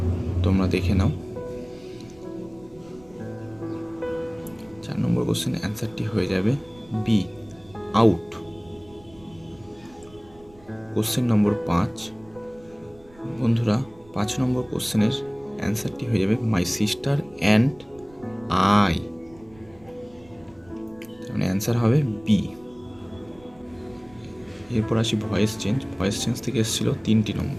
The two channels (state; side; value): noise; right; rumble, 26 dB below the sound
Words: তোমরা দেখে নাও। 4 নম্বর কোশ্চেনের অ্যান্সারটি হয়ে যাবে বি, আউট। কোশ্চেন নম্বর 5, বন্ধুরা 5 নম্বর কোশ্চেনের অ্যান্সারটি হয়ে যাবে মাই সিস্টার অ্যান্ড আই। মানে অ্যান্সার হবে বি। এরপর আসি ভয়েস চেঞ্জ। ভয়েস চেঞ্জ থেকে এসেছিলো 3টি